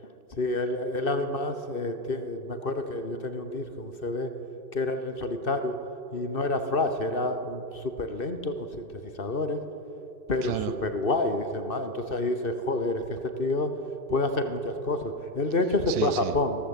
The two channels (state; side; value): late; right; 2.6 ms